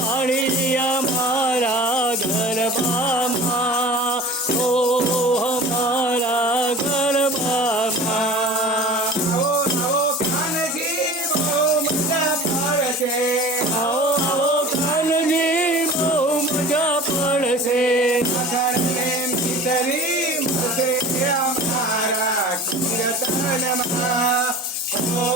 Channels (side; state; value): both; normal; correlation 0.39